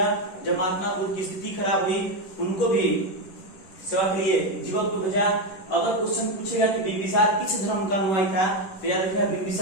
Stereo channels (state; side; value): late; right; 10 ms